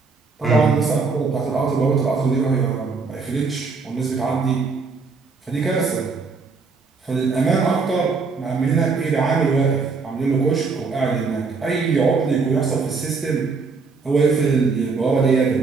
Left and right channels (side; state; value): left; quieter; 4.6 dB